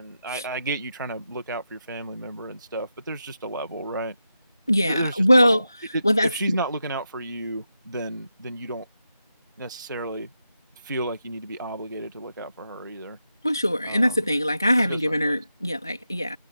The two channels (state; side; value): inverted; both; correlation -0.87